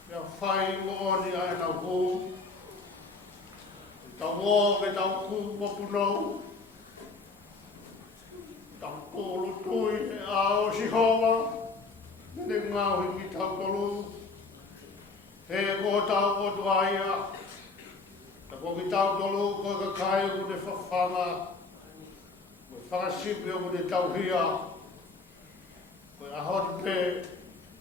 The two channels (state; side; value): quieter; right; 3.9 dB